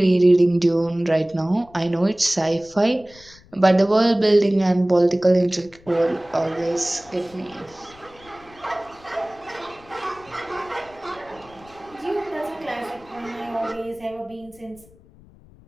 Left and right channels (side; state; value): left; noise; rumble, 25 dB below the sound